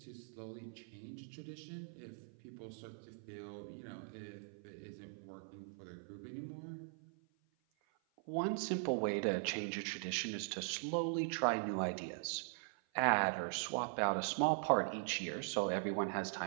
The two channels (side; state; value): left; silent; 50 dB below the other